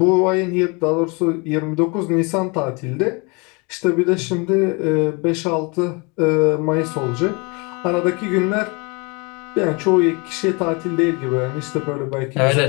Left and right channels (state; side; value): quieter; right; 29.8 dB